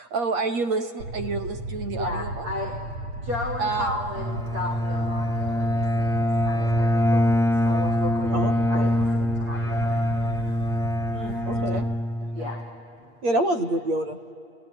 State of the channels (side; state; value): left; late; 8.5 ms